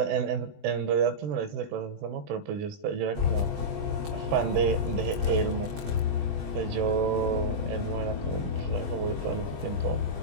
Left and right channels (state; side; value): late; left; 20 ms